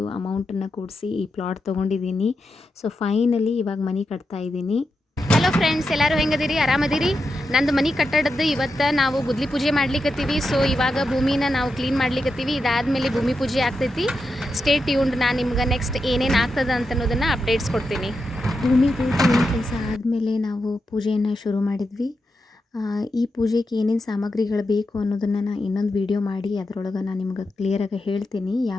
ಅಮೌಂಟನ್ನು ಕೂಡಿಸಿ ಈ ಪ್ಲಾಟ್ ತೊಗೊಂಡಿದ್ದೀನಿ. ಸೊ ಫೈನಲಿ ಇವಾಗ ಮನೆ ಕಟ್ತಾ ಇದ್ದೀನಿ. ಹಲೋ ಫ್ರೆಂಡ್ಸ್, ಎಲ್ಲರೂ ಹೆಂಗದಿರಿ? ಆರಾಮದಿರಿ? ನಂದು ಮನೆ ಕಟ್ಟಡದ್ದು ಇವತ್ತು ನಾವು ಗುದ್ಲಿ ಪೂಜೆ ಮಾಡ್ಲಿಕ್ಕತ್ತೀವಿ. ಸೊ ಇವಾಗ ಭೂಮಿನ ನಾವು ಕ್ಲೀನ್ ಮಾಡ್ಲಿಕ್ಕತ್ತೀವಿ. ಇದಾದಮೇಲೆ ಭೂಮಿ ಪೂಜೆ ಆಗ್ತೈತಿ. Stay tuned. ನಾನು ನಿಮ್ಗೆ ನೆಕ್ಸ್ಟ್ ಏನೇನು ಆಗ್ತದೆ ಅಂತ ಅನ್ನೋದನ್ನು ಅಪ್ಡೇಟ್ಸ್ ಕೊಡ್ತೀನಿ. ಭೂಮಿ ಕೆಲಸ ಆದಮೇಲೆ ನಾವು ಪೂಜೆಯನ್ನು ಶುರು ಮಾಡಿದ್ವಿ. ಈ ಪೂಜೆಗೆ ಏನೇನು ಸಾಮಗ್ರಿಗಳು ಬೇಕು ಅನ್ನೋದನ್ನು ನಾನು ಇನ್ನೊಂದು ವಿಡಿಯೋ ಮಾಡಿ ಅದರೊಳಗೆ ನಾನು ನಿಮ್ಗೆ ಕ್ಲಿಯರಾಗಿ ಹೇಳ್ತೀನಿ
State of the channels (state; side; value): normal; both; correlation 0.87